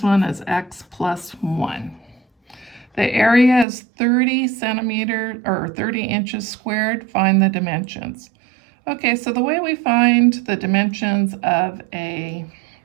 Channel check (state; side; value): drops out; left; at 3.7 s